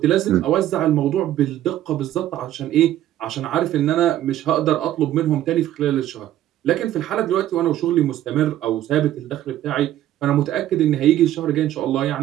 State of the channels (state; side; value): quieter; left; 12.8 dB